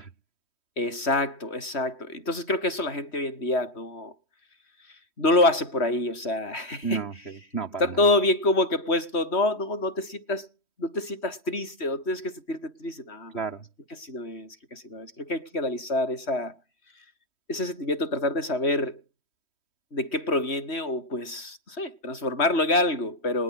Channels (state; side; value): late; right; 3.1 ms